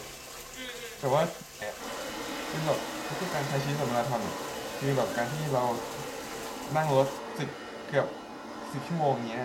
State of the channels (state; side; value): identical; both; correlation 1.00